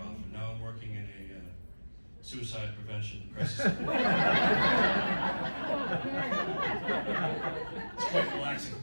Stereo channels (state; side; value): inverted; both; correlation -1.00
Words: and now I'm working in a suicide prevention crisis. It's quite relaxing.